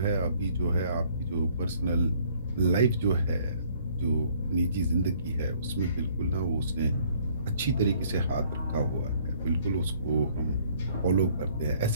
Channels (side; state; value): both; inverted; correlation -0.60